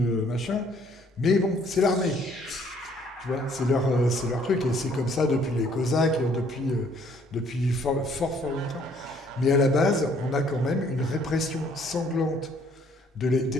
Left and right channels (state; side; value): normal; both; correlation 0.62